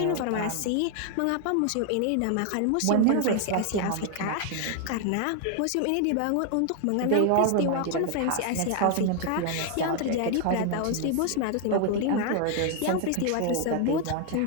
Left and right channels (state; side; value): different; both; correlation 0.00